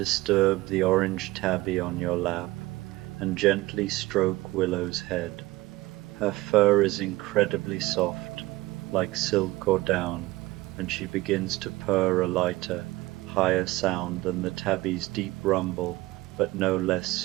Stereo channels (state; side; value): quieter; left; 19.4 dB